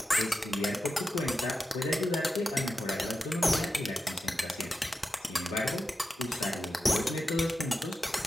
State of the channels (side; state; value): both; normal; correlation 0.91